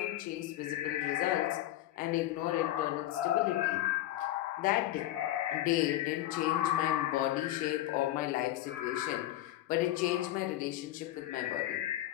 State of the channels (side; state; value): right; quieter; 14.3 dB